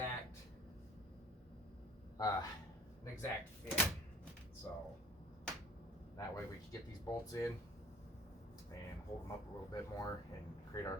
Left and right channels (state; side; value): normal; both; correlation 0.47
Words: fit. So that way we can get these bolts in and hold them up a little bit more and create our